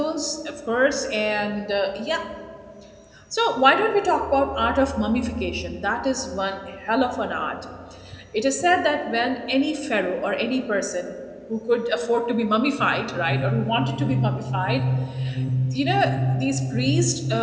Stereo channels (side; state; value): both; identical; correlation 1.00